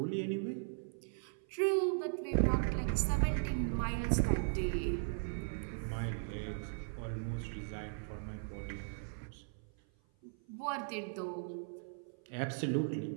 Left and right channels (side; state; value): left; silent; 52 dB below the other